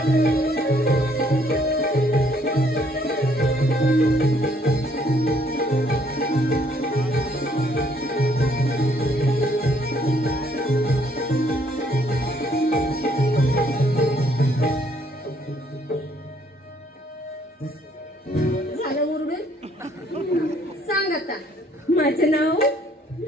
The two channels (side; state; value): both; normal; correlation 0.65